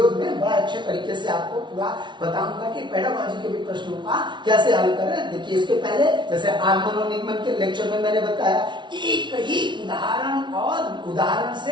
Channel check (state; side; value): late; left; 0.23 ms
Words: में बड़ा अच्छे तरीके से आपको पूरा बताऊंगा कि पेडागॉजी के भी प्रश्नों का कैसे हल करें। देखिए इसके पहले जैसे आगमन और निगमन के लेक्चर में मैंने बताया, एक ही उदाहरण और उदाहरण